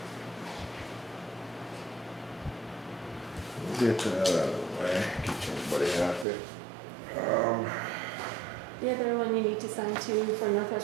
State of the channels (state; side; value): drops out; left; at 6.2 s